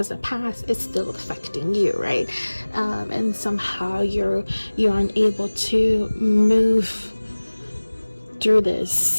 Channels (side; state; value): both; inverted; correlation -1.00